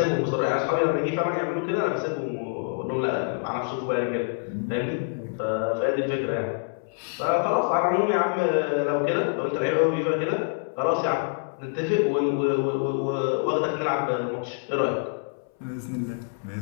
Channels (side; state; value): right; silent; 61 dB below the other